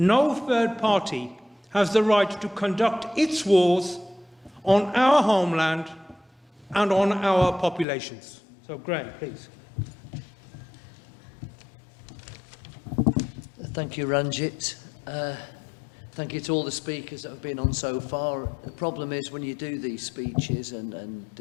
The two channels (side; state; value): right; drops out; at 7.9 s